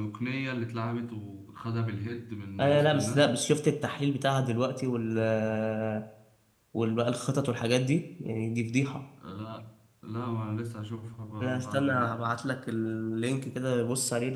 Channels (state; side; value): identical; both; correlation 1.00